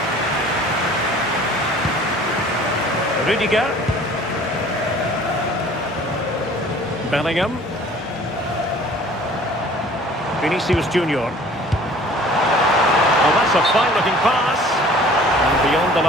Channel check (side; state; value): both; normal; correlation 0.50